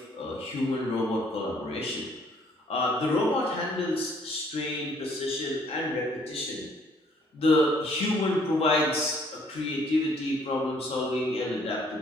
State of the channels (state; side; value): normal; both; correlation 0.63